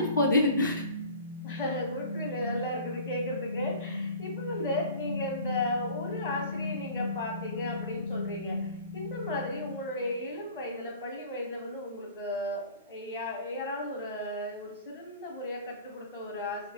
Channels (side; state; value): both; inverted; correlation -0.45